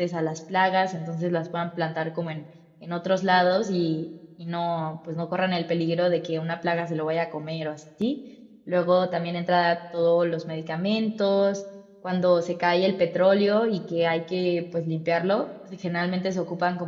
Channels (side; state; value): both; identical; correlation 1.00